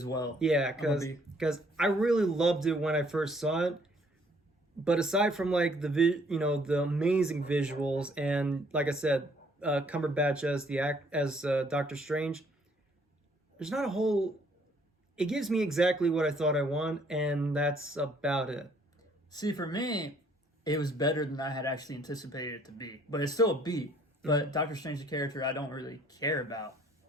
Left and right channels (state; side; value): normal; both; correlation 0.63